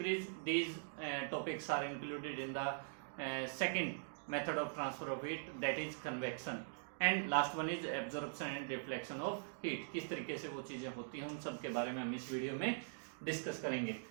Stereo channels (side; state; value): left; silent; digital silence